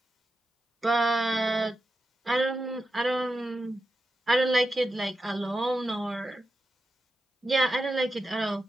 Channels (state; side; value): normal; both; correlation 0.90